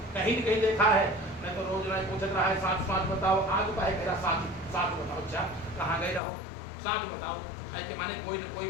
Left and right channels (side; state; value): right; drops out; at 6.2 s